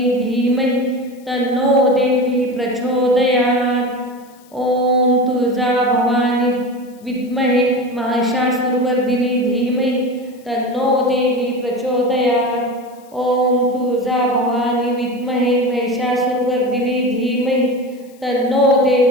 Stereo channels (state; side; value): noise; left; hiss, 29 dB below the sound